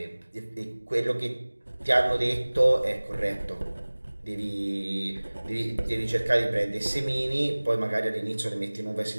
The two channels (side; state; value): both; inverted; correlation -1.00